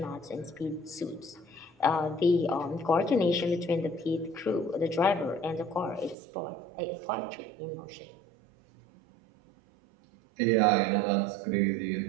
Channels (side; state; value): left; drops out; at 6.2 s